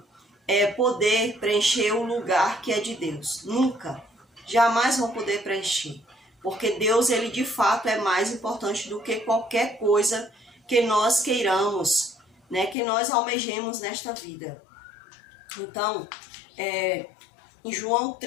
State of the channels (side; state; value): right; drops out; at 12.8 s